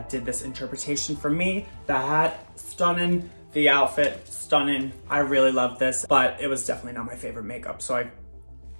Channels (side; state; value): both; inverted; correlation -1.00